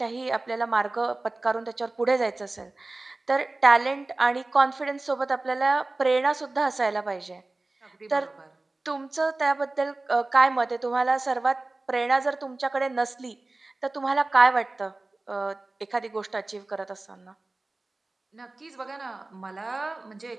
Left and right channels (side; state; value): left; quieter; 3.1 dB